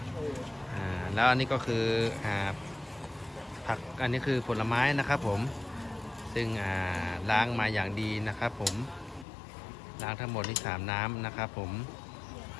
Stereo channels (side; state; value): right; drops out; at 9.2 s